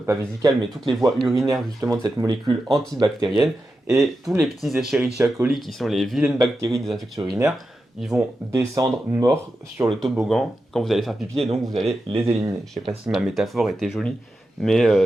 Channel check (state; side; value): normal; both; correlation 0.90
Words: vésicales, mais toutes les voies urinaires justement de cette molécule antibactérienne. Et tous les petits Escherichia coli, qui sont les vilaines bactéries des infections urinaires, ils vont descendre morts sur le toboggan quand vous allez faire pipi et donc vous allez les éliminer. Je sais pas si ma métaphore était jolie, mais